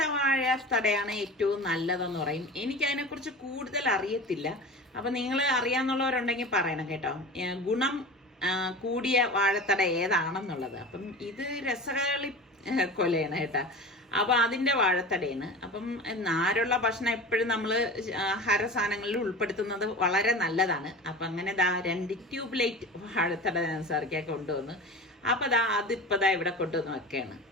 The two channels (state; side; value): normal; both; correlation 0.34